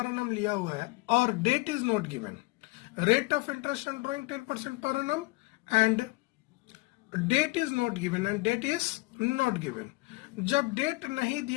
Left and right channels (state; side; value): quieter; right; 24.1 dB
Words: एनम लिया हुआ है और date is not given, rate of interest on drawing 10% per annum and date is not given and date is not given. जब डेट नहीं